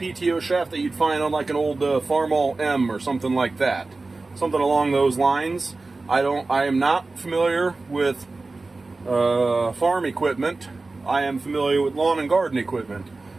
shaft that you'd find on like an old Farmall M or something like that. Something along those lines. I am not familiar with farm equipment. I am familiar with lawn and garden equipment.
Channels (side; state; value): left; quieter; 3.5 dB